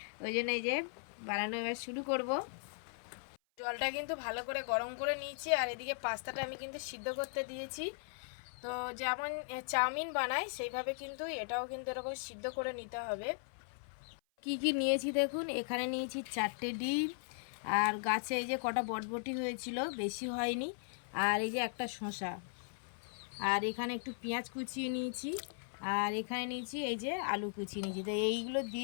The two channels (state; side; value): silent; right; 52 dB below the other